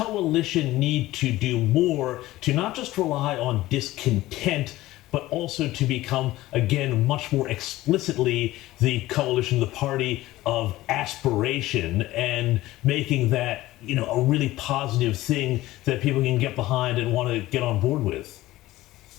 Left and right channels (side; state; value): right; quieter; 16.9 dB